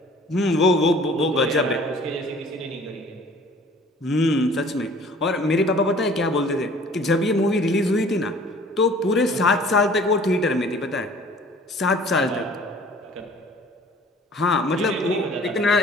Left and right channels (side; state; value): both; normal; correlation 0.51